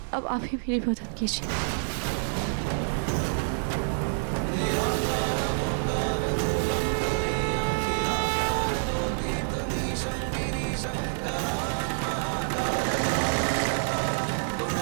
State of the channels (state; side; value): silent; left; digital silence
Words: अब आप ही मेरी मदद कीजिए।